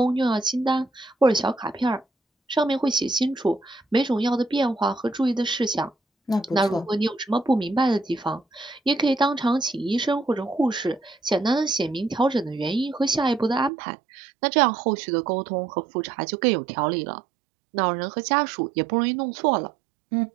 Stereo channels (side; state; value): left; drops out; at 13.7 s